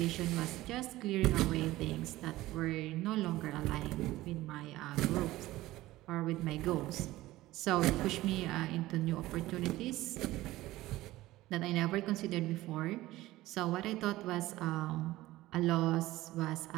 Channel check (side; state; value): left; quieter; 17.1 dB